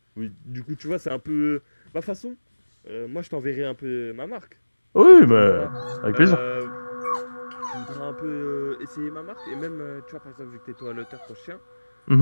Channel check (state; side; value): inverted; both; correlation -1.00